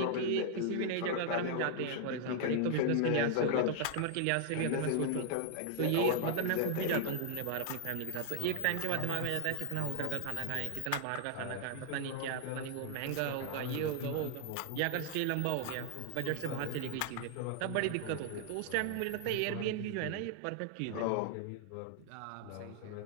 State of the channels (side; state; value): both; different; correlation 0.00